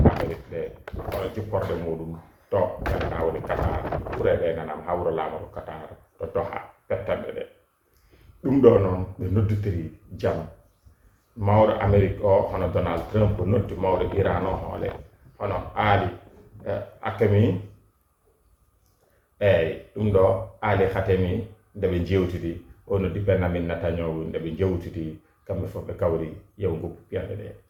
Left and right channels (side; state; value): both; identical; correlation 1.00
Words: Amérique ɗe hono jipporde muɗum to gandanɗa woni Qatar kure ɗe nanam hawro lamaɗo Qatar to Doha pettanɗe ɗe ɗum ɗo noon ɓe nodditiri jaam mawɗo Amérique o hono Donald Trump noddi mawɗo Iran o hoole hono Ali Hakemi eyyi ɗum ɗo Ali Khatemi ndeɓe jewtidi o noddi Benjamin Netanyahu ndeɓe jewtidi kamɓe fof ɓe kawri yew goppi piyande ɗe